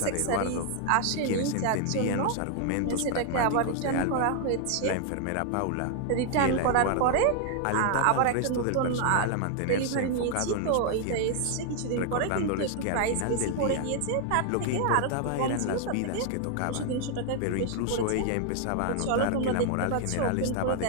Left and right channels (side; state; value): both; different; correlation 0.00